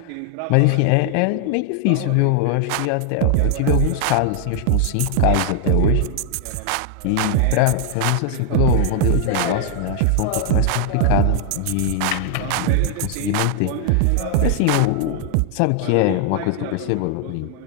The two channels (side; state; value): both; different; correlation 0.00